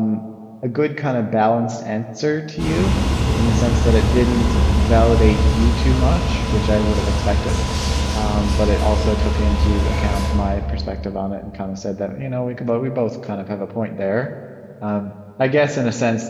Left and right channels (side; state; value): both; identical; correlation 1.00